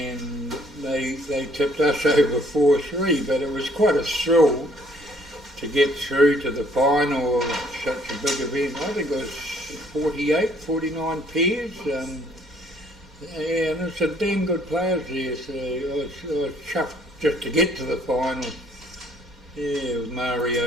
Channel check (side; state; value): both; normal; correlation 0.62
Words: they tipped us over 4-3, but it was quite a thrill to get through to the final of such a big event. I think it was 49 pairs. And it's a damn good players there, so I was chuffed just to get to the final. Yeah, with